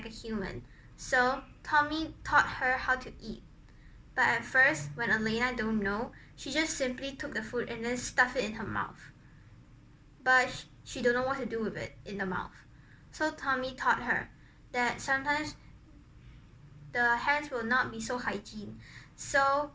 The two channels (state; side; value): identical; both; correlation 1.00